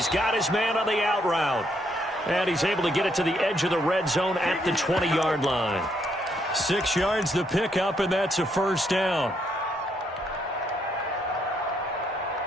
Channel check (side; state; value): both; normal; correlation 0.74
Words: got his man on the out route. And he's able to get it to the edge of the red zone at the 20-yard line. 6 yards the pickup, and that's a 1st down.